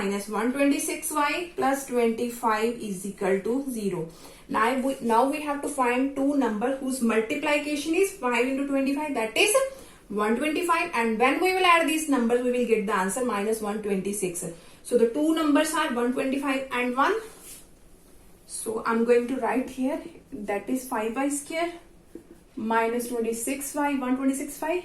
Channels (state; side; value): identical; both; correlation 1.00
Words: 126y plus 25 is equal to 0. Now we have to find two numbers whose multiplication is 5 into 25, that is 125, and when we will add these numbers we will get the answer minus 126. So the two numbers are 125 and 1. So I'm going to write here, that is 5y square minus 26y, 126y